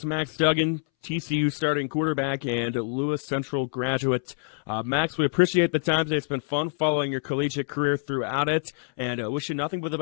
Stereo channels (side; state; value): right; silent; 61 dB below the other